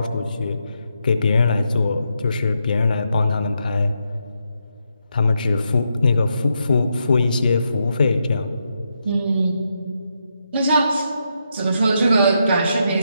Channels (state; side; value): inverted; both; correlation -0.82